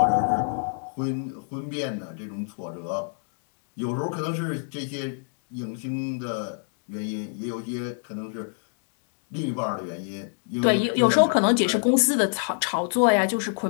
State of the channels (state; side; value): silent; right; 61 dB below the other